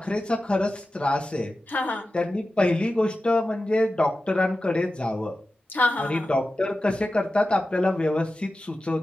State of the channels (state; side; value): normal; both; correlation 0.93